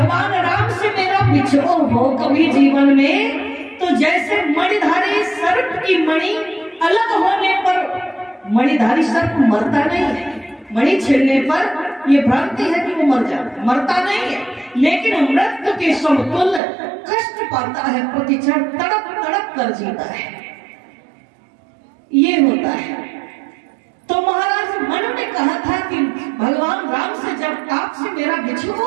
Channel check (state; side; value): drops out; left; at 16.6 s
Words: राम से मेरा बिछोह हो कभी जीवन में, तो जैसे मणिधारी सर्प की मणि अलग होने पर मणिधारी सर्प मरता नहीं है, मणि छेड़ने पर यह भ्रांति है कि वो मरता नहीं है, लेकिन मृत्यु के समतुल्य कष्ट पाता है, प्रतिक्षण तड़प तड़प कर जीता है। ये होता है। तो महाराज मनु ने कहा था कि भगवान राम से जब आपसे मेरा बिछोह